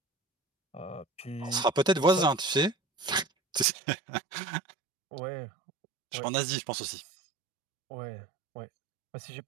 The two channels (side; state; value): left; drops out; at 3.7 s